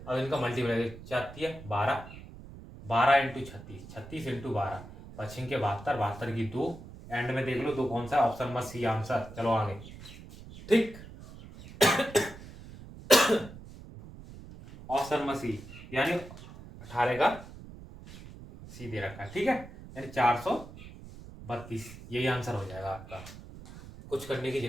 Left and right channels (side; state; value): right; noise; rumble, 16 dB below the sound